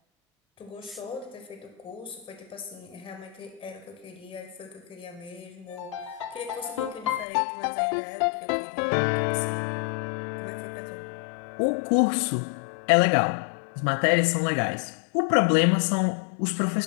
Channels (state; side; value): drops out; right; at 7.2 s